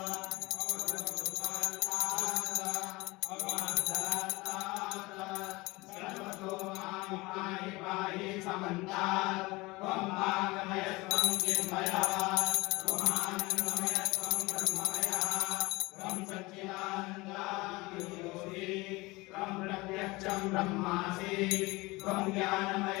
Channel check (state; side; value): quieter; right; 22.6 dB